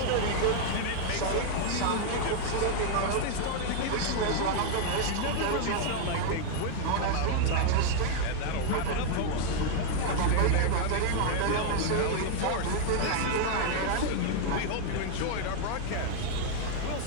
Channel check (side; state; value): both; different; correlation 0.00